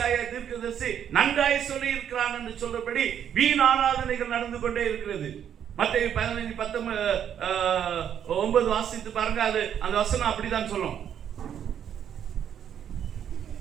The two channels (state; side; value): quieter; left; 9.1 dB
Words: தீர்க்கதரிசி நன்றாய் சொல்லி இருக்கிறான் என்று சொல்றபடி வீண் ஆராதனைகள் நடந்து கொண்டே இருக்கிறது. மத்தேயு 15:19 வாசித்து பாருங்க. அது அந்த வசனம் அப்படிதான் சொல்லும்.